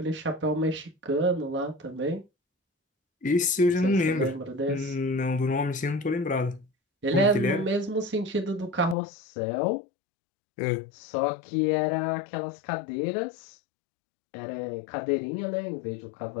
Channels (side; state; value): right; drops out; at 9.0 s